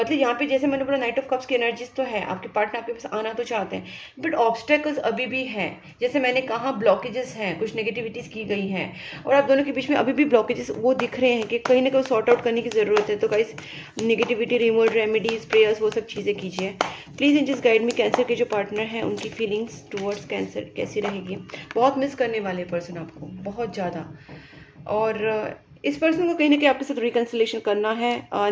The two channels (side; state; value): both; identical; correlation 1.00